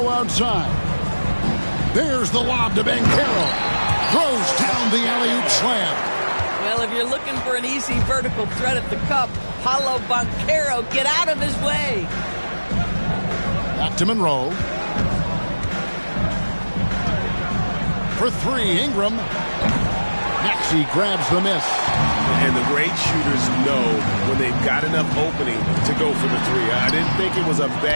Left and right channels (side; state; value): both; inverted; correlation -1.00